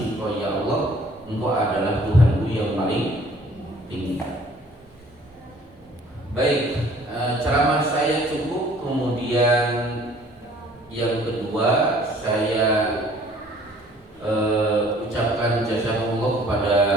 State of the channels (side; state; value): both; normal; correlation 0.55